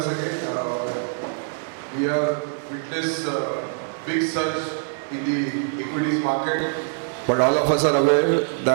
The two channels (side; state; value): left; silent; digital silence